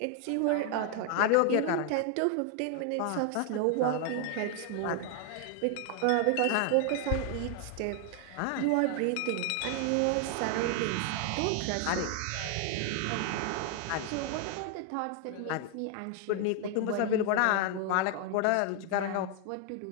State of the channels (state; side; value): different; both; correlation 0.00